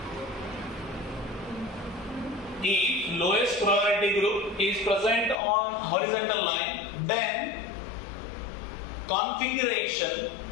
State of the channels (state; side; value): drops out; right; at 5.4 s